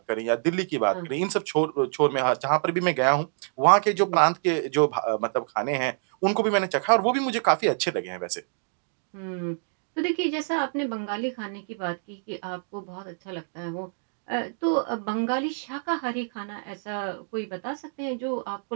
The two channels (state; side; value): silent; left; digital silence